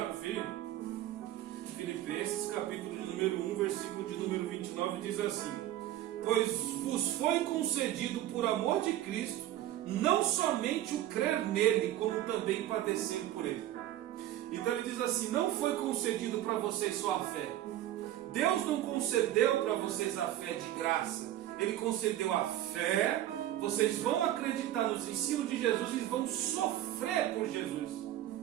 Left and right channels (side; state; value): left; quieter; 13.2 dB